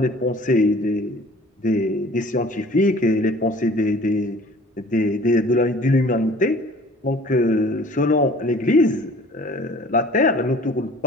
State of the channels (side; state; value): both; normal; correlation 0.49